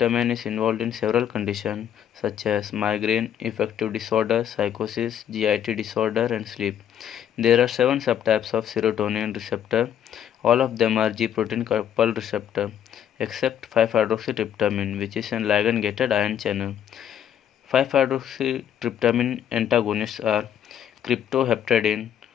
is involved in several conditions such as migraine, affective disorder, psychosis, GIT disorder and sleep. There are 7 subtypes of serotonin receptor. All of them are G-protein coupled receptor except 5-hydroxytryptamine, which is an ligand-gated ion channel. 5-hydroxytryptamine antagonists are cryptoheptadine.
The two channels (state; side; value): quieter; right; 9.8 dB